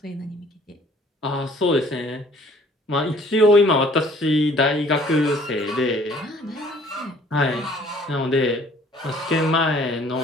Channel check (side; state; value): both; normal; correlation 0.56